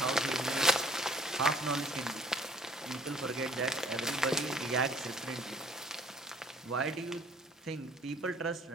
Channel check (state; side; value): normal; both; correlation 0.57